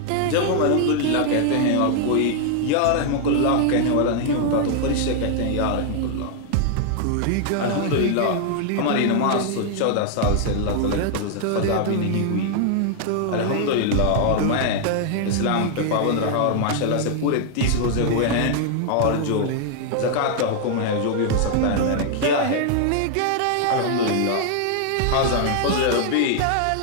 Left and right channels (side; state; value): both; different; correlation 0.00